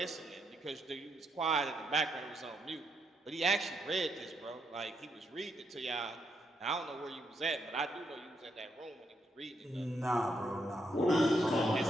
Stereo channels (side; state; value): both; normal; correlation 0.78